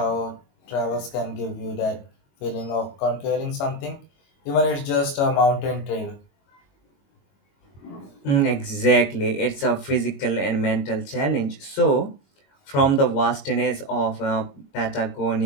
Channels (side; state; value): right; late; 22 ms